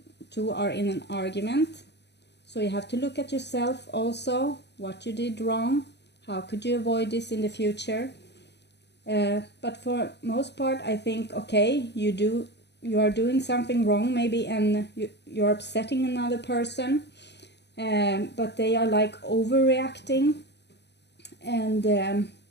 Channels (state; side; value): late; right; 0.50 ms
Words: two are in an argument. So you have to look at yourself also, what you did wrong, how could you avoid this in the future. But for most part, I think, okay, you are doing something wrong maybe, and you're upsetting another person, but they are like overreacting, and